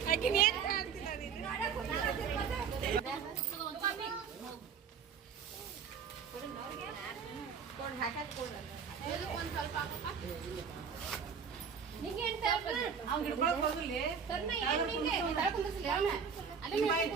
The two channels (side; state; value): left; quieter; 6.6 dB